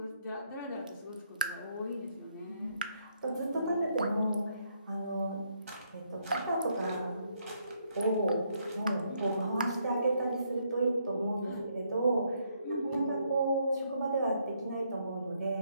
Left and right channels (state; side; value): inverted; both; correlation -0.73